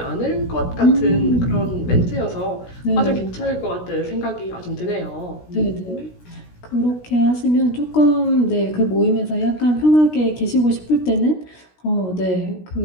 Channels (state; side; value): late; right; 16 ms